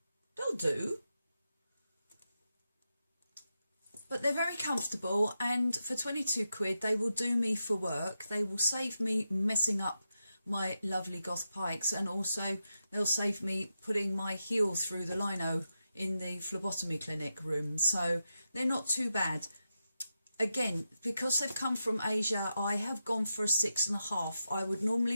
They'll do, but they're very comfortable, and for 22 quid they will do me for work. They will save me messing up my lovely Goth Pikes, and also they'll save me putting my heel through the lino in the phlebotomy clinic room, so they're not too bad. Again, because they've come from Asia, I have gone for a 6.5. I would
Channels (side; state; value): both; inverted; correlation -0.88